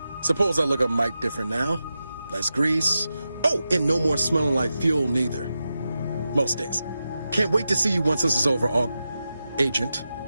Suppose I look a mite different now. Less grease. Oh, and no more smelling like fuel neither. Most days. Can't wait to see you once this is over, Agent.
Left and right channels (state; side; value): inverted; both; correlation -0.91